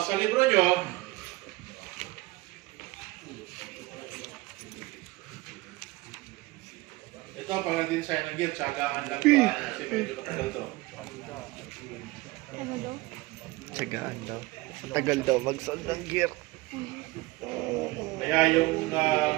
sa libro nyo, ito, pag nag-design ng gear, tsagaan lang ba? Kasi medyo katagal to. Ano daw? Tsagaan daw. Tagal daw mag-solve ng gear. Kaya yung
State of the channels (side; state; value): left; quieter; 20.6 dB